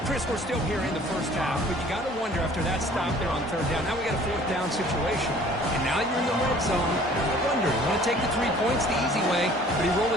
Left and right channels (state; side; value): normal; both; correlation 0.52